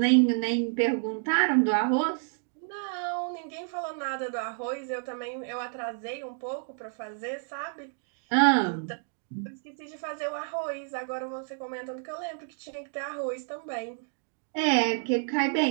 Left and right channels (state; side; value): silent; left; 58 dB below the other